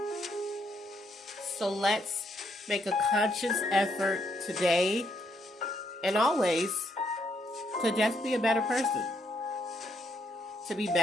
So let's make a conscious effort today and always to just be a better person. To be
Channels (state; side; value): normal; both; correlation 0.75